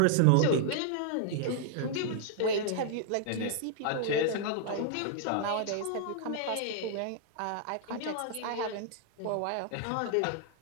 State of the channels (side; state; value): both; different; correlation -0.01